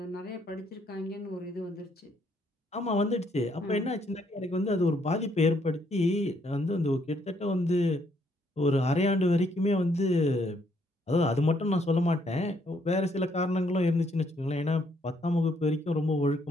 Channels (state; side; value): normal; both; correlation 0.70